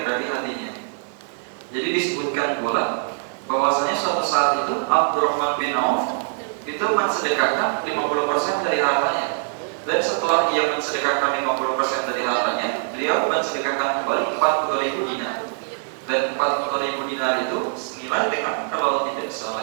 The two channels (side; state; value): left; silent; 63 dB below the other